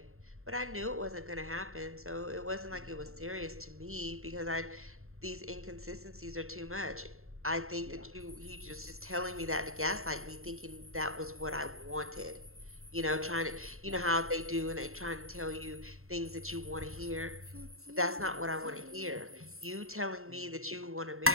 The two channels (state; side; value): late; left; 0.62 ms